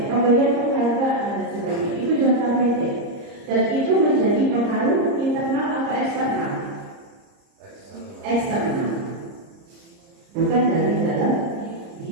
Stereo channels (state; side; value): late; left; 30 ms